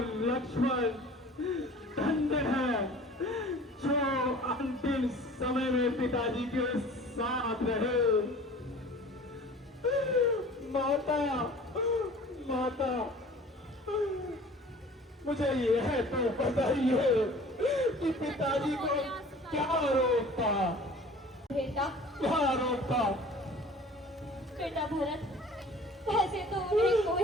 लक्ष्मण धन्य है जो अंतिम समय में पिताजी के साथ रहे। माता मुझे यह तो बताइए कि पिताजी को क्या रोग था? बेटा भरत, वैसे तो उन्हें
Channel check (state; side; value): normal; both; correlation 0.46